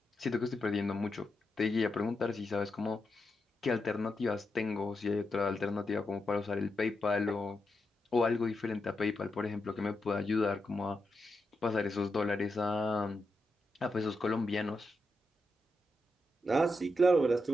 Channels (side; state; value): both; normal; correlation 0.86